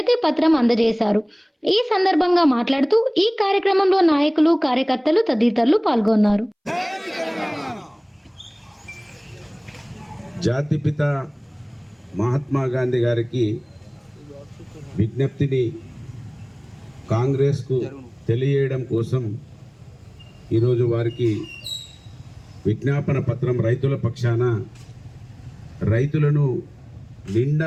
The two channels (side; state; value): both; identical; correlation 1.00